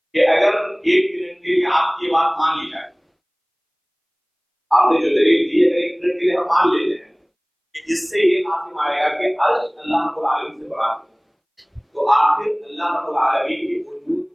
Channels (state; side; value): identical; both; correlation 1.00